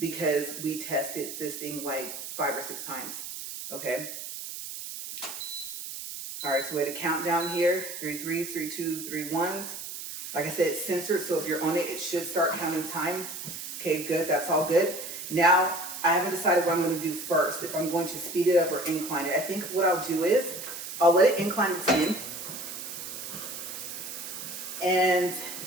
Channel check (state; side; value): noise; right; hiss, 8 dB below the sound